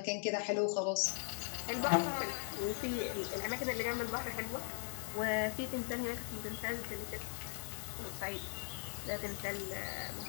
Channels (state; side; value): silent; right; digital silence